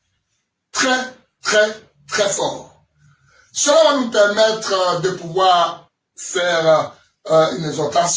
Très, très, très fort. Cela va nous permettre de pouvoir faire une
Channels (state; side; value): identical; both; correlation 1.00